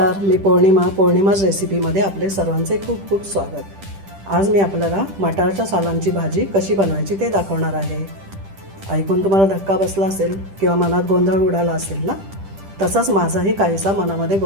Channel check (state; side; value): late; left; 10 ms